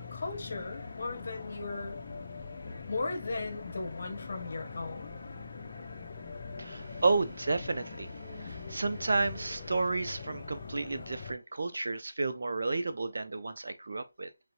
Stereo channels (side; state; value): both; inverted; correlation -0.90